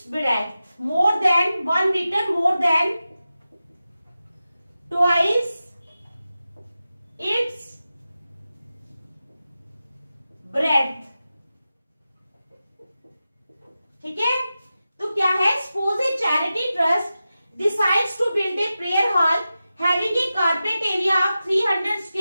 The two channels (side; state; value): both; inverted; correlation -0.93